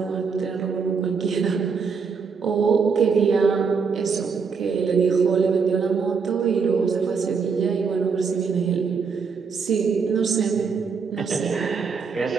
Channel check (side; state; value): left; quieter; 5.5 dB